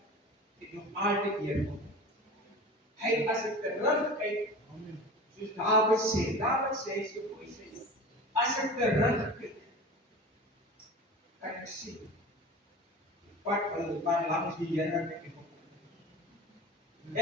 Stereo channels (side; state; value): both; normal; correlation 0.35